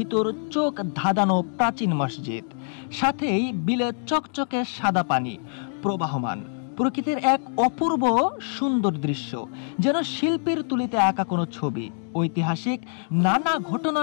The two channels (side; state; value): right; silent; 62 dB below the other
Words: চোখ ধাঁধানো প্রাচীন মসজিদ, সাথেই বিলে চকচকে সাদা পানি প্রবাহমান। প্রকৃতির এক অপূর্ব সুন্দর দৃশ্য, যেন শিল্পীর তুলিতে আঁকা কোনো ছবি। ঐতিহাসিক নানা